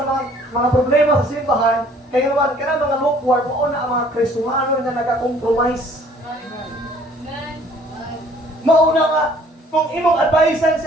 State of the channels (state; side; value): normal; both; correlation 0.57